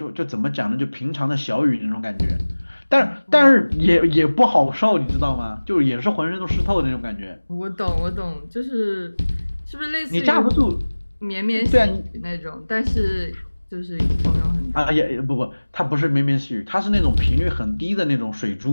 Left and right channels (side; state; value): both; inverted; correlation -1.00